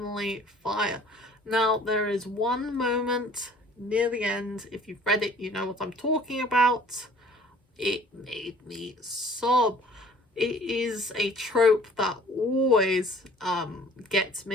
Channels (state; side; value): normal; both; correlation 0.52